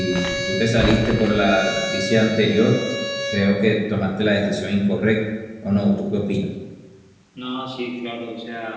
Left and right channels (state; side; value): identical; both; correlation 1.00